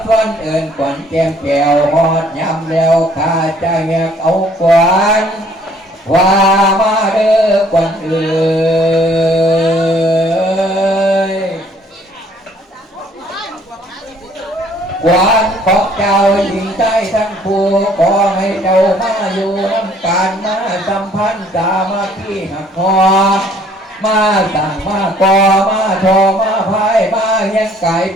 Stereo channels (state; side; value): normal; both; correlation 0.59